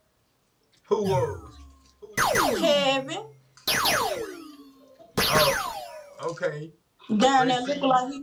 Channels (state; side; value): identical; both; correlation 1.00